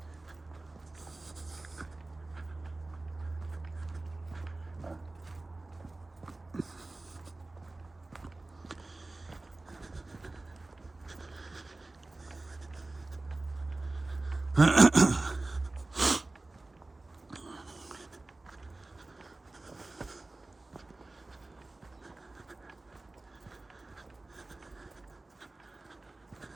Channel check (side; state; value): left; quieter; 3.1 dB